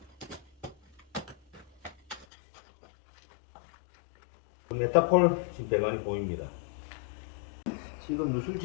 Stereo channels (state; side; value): drops out; right; at 2.2 s